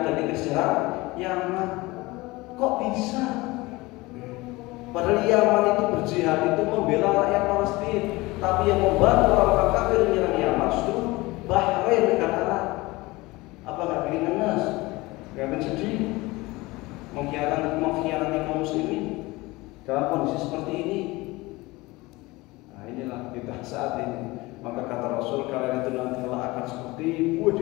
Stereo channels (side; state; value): right; quieter; 21.6 dB